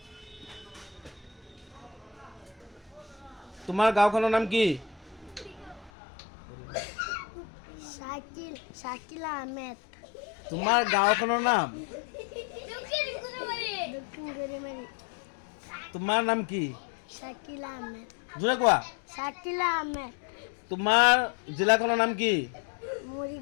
তোমাৰ গাঁওখনৰ নাম কি? শাকিল আহমেদ। তোমাৰ গাঁওখনৰ নাম? দক্ষিণ গুৰিমাৰী। তোমাৰ নাম কি? শাকিল আহমেদ। জোৰে কোৱা। শাকিল আহমেদ। তোমাৰ জিলাখনৰ নাম কি?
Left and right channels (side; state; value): right; drops out; at 5.9 s